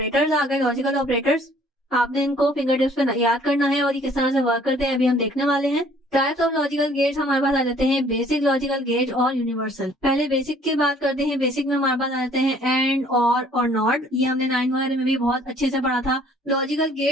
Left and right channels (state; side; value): normal; both; correlation 0.58